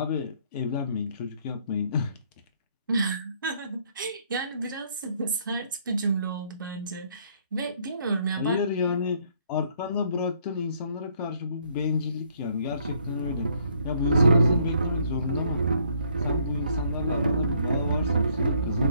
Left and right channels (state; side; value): inverted; both; correlation -0.66